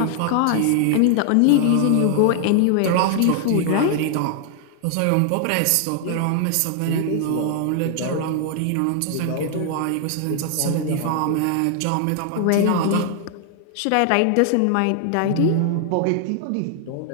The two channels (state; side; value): different; both; correlation 0.00